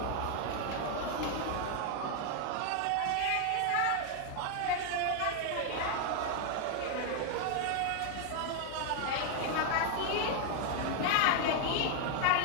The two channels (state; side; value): different; both; correlation 0.00